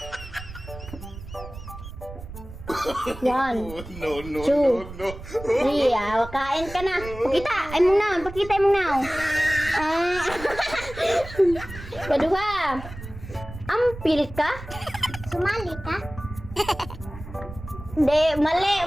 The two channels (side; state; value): right; noise; rumble, 13 dB below the sound